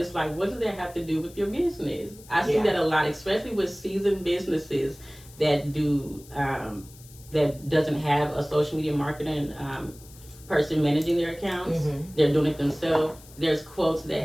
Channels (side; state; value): left; noise; hiss, 22 dB below the sound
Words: it's like, what does that have to do with your business? I see that a lot, especially with seasoned businesses that do that doesn't have a social media marketing person managing their accounts. They're doing it themselves. There's quotes